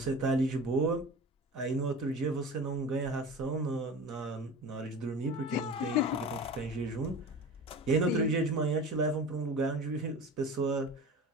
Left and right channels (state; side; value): normal; both; correlation 0.34